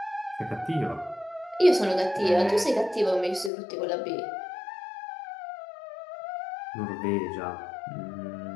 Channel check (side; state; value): right; drops out; at 3.5 s